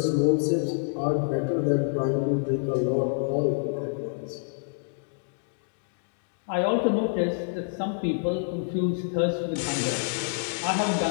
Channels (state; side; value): silent; right; digital silence